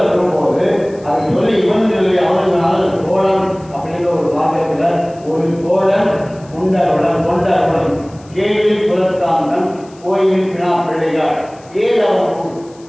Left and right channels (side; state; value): left; noise; hiss, 28 dB below the sound